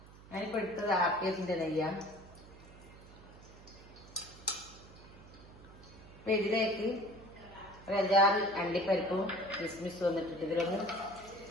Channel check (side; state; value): right; noise; hum, 19 dB below the sound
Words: ഞാനിപ്പോ എടുത്തത് ആർക്കേസിന്റെ നെയ്യാണ്. അപ്പൊ ഇതിലേക്ക് ഒരു 5-6 അണ്ടിപ്പരിപ്പും കിസ്മിസും വന്നിട്ടിട്ട് ഇതിലൊന്ന്